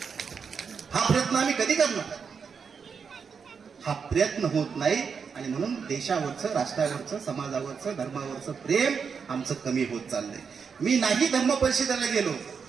हा प्रयत्न होत नाही, आणि म्हणून देशावरचं, राष्ट्रावरचं, समाजावरचं, धर्मावरचं प्रेम आमचं कमी होत चाललंय. मी नाही धर्म परिषदेला गेलो,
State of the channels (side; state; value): left; quieter; 6.1 dB